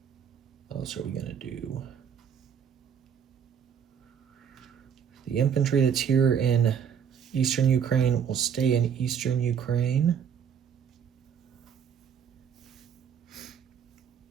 what else are we going to do? The infantry that's here in Eastern Ukraine will stay in Eastern Ukraine.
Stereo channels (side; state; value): left; quieter; 7.9 dB